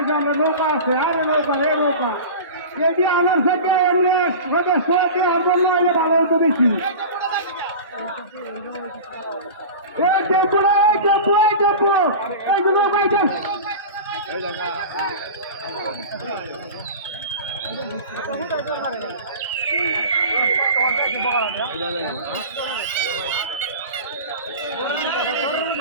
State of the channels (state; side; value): inverted; both; correlation -0.32